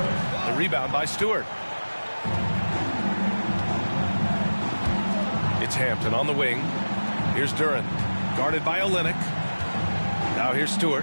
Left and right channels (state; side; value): inverted; both; correlation -1.00